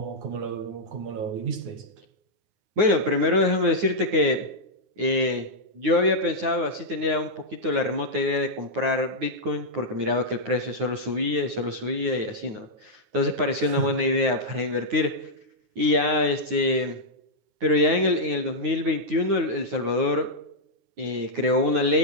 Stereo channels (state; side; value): late; left; 9.5 ms